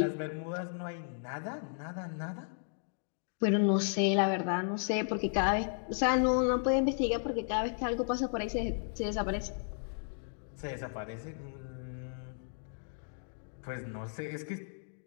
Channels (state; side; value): silent; right; digital silence